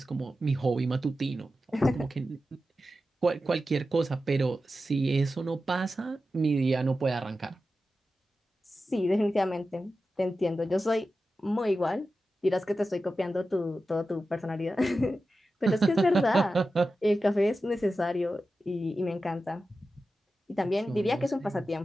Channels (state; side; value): normal; both; correlation 0.92